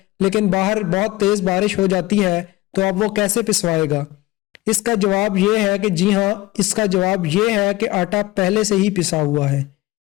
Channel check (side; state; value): right; quieter; 19.0 dB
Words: لیکن باہر بہت تیز بارش ہو جاتی ہے تو اب وہ کیسے پسوائے گا؟ اس کا جواب یہ ہے کہ جی ہاں، اس کا جواب یہ ہے کہ آٹا پہلے سے ہی پسا ہوا ہے۔